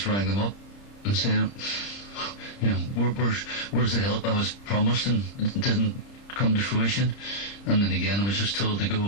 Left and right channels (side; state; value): right; late; 30 ms